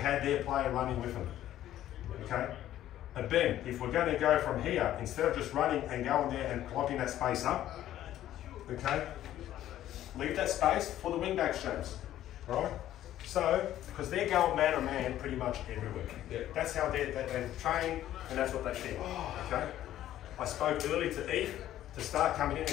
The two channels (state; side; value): quieter; right; 12.7 dB